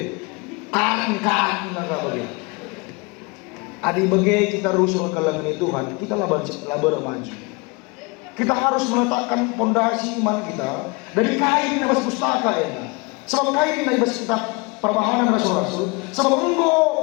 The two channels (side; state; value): right; quieter; 28.2 dB